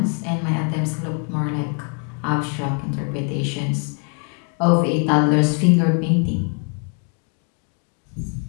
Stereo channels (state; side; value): quieter; right; 38.3 dB